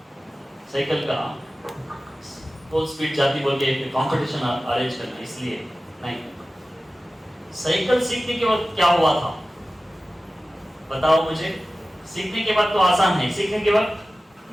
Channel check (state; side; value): normal; both; correlation 0.96